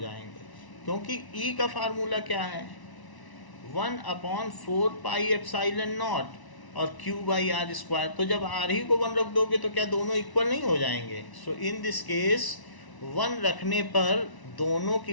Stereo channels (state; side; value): late; right; 1.0 ms